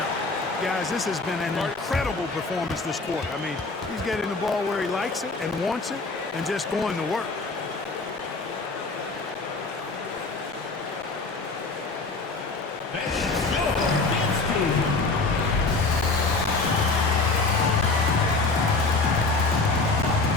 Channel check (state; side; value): quieter; right; 3.7 dB